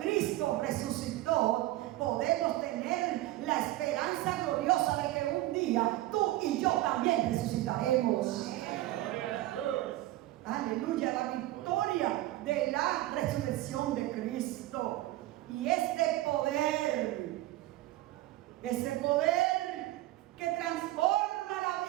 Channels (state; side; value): quieter; left; 16.5 dB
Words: resucitó, podemos tener la esperanza gloriosa de que un día tú y yo también resucitaremos. Aleluya, la victoria de la resurrección de Cristo. Y ese poder que transforma la